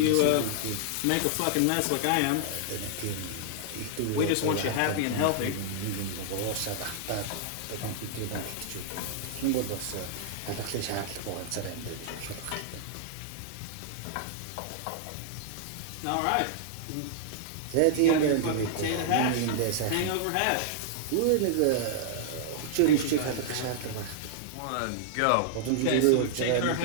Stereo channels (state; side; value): different; both; correlation -0.01